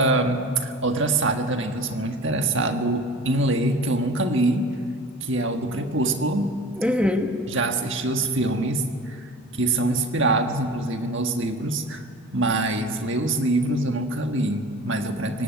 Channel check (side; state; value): both; normal; correlation 0.39